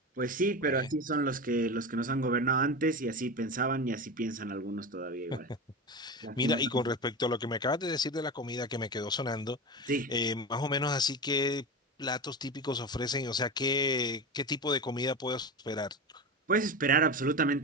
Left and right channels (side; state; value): both; normal; correlation 0.24